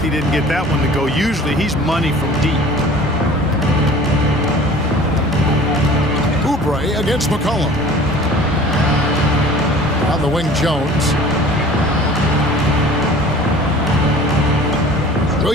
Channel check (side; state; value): both; normal; correlation 0.45